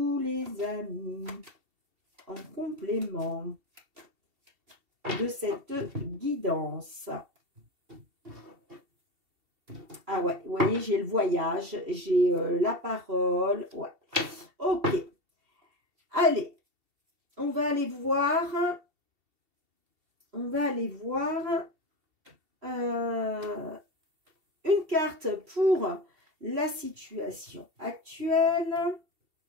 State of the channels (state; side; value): late; left; 2.7 ms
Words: les amis, en complément de cette guidance? Ah ouais, vous voyez, j'ai le voyage, j'ai la parole. Ouais. Ok. Allez. On va aller voir une carte pour la situation actuelle,